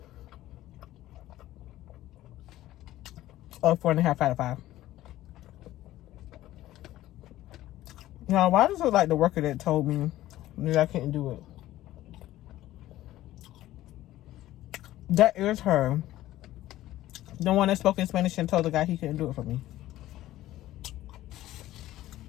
Or 4.5 out of 5. Now, why does it look like the worker that told me that I couldn't do it? That is her. The one that spoke in Spanish and told the guy he couldn't do it for me.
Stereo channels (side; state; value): right; quieter; 14.9 dB